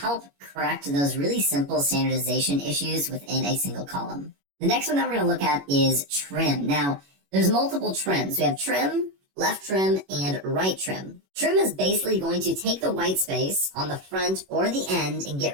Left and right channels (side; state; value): left; late; 21 ms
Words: correct those really simple standardization issues within a single column. The next one that we're going to look at is trim. Now, there's multiple trims. We have trim, left trim, and right trim. Trim is basically going to take the white space on the front or the end and